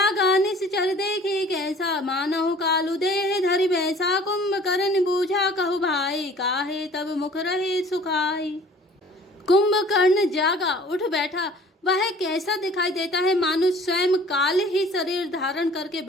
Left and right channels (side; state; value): both; normal; correlation 0.50